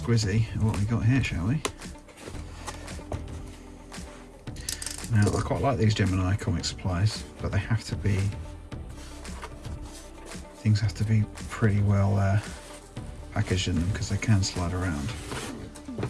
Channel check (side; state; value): both; identical; correlation 1.00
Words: at what we got here, shall we? Now, I quite like these Gemini comic supplies, but they have to be, things have to be pretty well packaged in them because they can slide around.